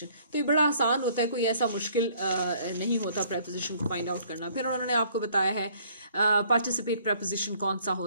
तो ये बड़ा आसान होता है, कोई ऐसा मुश्किल नहीं होता preposition को find out करना. फिर उन्होंने आपको बताया है participate preposition कौन सा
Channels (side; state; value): both; inverted; correlation -0.60